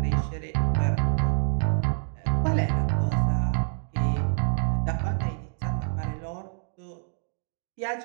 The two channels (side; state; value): left; silent; digital silence